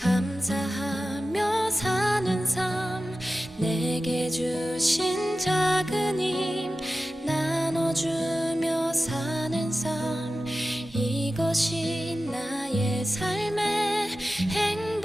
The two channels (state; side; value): normal; both; correlation 0.94